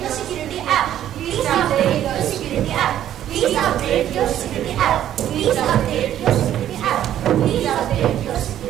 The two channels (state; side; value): quieter; left; 11.4 dB